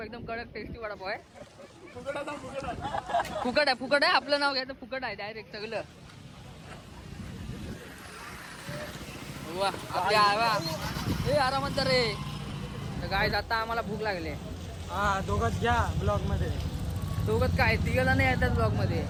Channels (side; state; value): both; identical; correlation 1.00